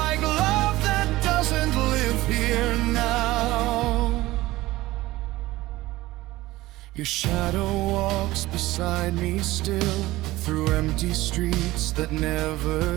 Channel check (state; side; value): quieter; left; 18.0 dB